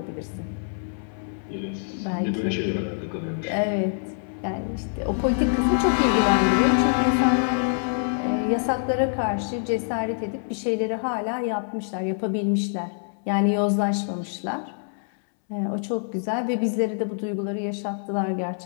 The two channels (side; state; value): right; silent; 62 dB below the other